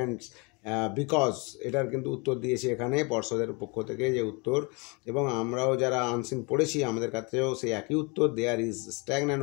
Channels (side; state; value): right; quieter; 30.5 dB